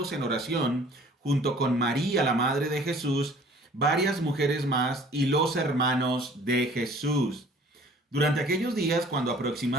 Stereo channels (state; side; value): normal; both; correlation 0.52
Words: en oración, junto con María, la madre de Jesús, varias mujeres más y los hermanos de Jesús. Durante aquellos días, cuando